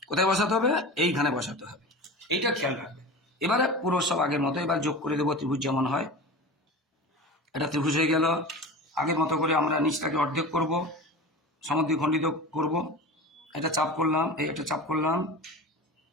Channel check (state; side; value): normal; both; correlation 0.32